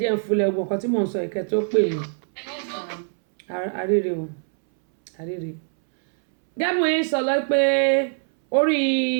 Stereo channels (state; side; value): silent; left; 63 dB below the other